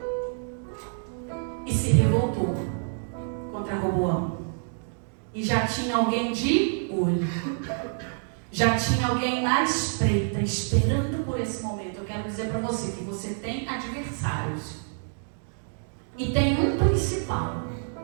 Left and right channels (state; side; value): silent; left; digital silence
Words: e se revoltou contra Roboão. E já tinha alguém de olho. Já tinha alguém na espreita, esperando por esse momento. Eu quero dizer para você que você tem adversários. E tem um principal,